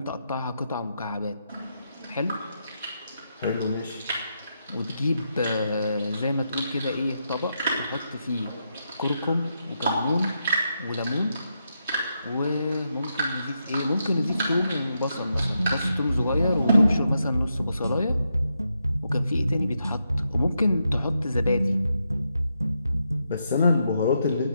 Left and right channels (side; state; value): both; inverted; correlation -0.83